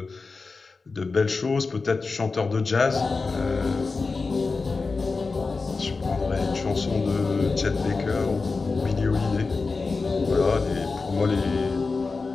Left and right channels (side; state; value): right; quieter; 4.1 dB